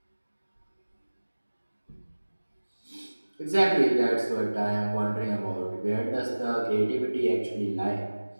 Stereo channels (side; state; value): both; inverted; correlation -1.00